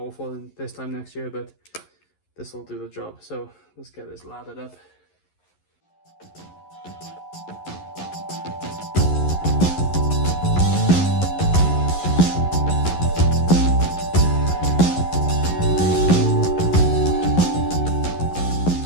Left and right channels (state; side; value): late; right; 11 ms